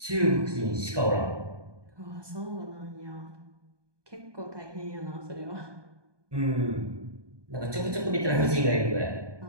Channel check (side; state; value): left; late; 1.2 ms